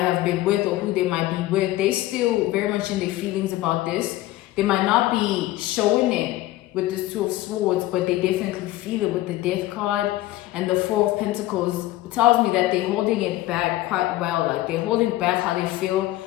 been with or who they might be with, they still very much in their feelings about this. They might not be showing it with this Two of Swords, but they definitely feel it with the Death card. And the Four of Pentacles tells me that they're holding it back quite well. Like they're holding back how they feel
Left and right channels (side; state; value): right; quieter; 16.2 dB